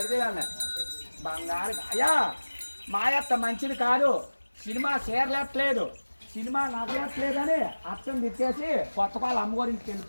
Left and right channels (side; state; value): both; inverted; correlation -1.00